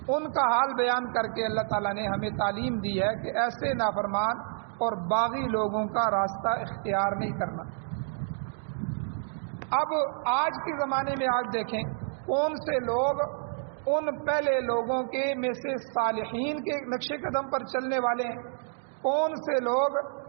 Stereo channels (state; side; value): silent; left; digital silence